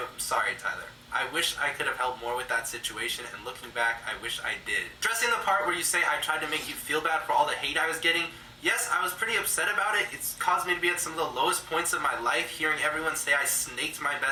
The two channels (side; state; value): both; identical; correlation 1.00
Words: sorry, Tyler. I wish I could have helped more with that situation, and looking back, I wish I did. Addressing the part where you say I tried to make you feel bad for all the hate I was getting, yes, I was pretty upset about it. It's caused me to be at some of the lowest points of my life, hearing everyone say I snaked my